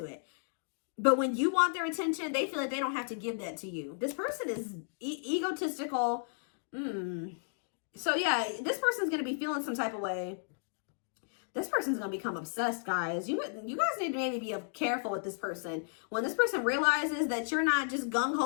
it. But when you want their attention, they feel like they don't have to give that to you. This person is egotistical. So yeah, this person's going to be feeling some type of way. This person's going to become obsessed, guys. You guys need to maybe be careful with this person. When this person realizes that you're not just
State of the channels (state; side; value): silent; right; digital silence